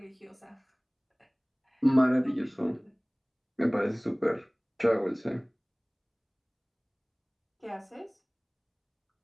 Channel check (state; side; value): identical; both; correlation 1.00